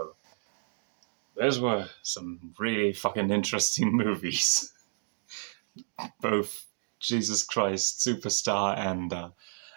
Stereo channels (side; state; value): left; silent; digital silence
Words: those were some really fucking interesting movies. Both Jesus Christ Superstar and